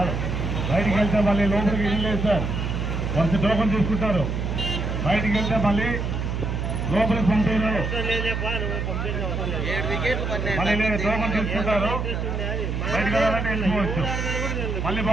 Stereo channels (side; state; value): right; noise; hum, 2 dB below the sound